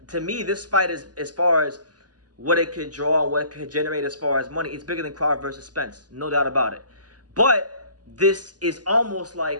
To me, this fight is, as far as what it could draw and what it could generate as far as money, it's bigger than Crawford versus Spence, no doubt about it. But this is almost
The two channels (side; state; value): left; late; 0.69 ms